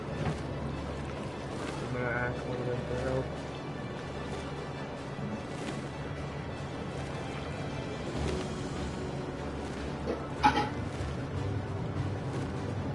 I'm gonna ask one of them for help.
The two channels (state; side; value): noise; left; rumble, 21 dB below the sound